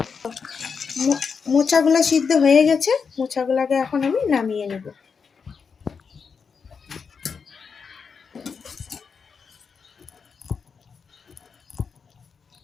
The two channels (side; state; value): right; quieter; 5.8 dB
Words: মোচাগুলো সিদ্ধ হয়ে গেছে, মোচাগুলোকে এখন আমি নামিয়ে নেব।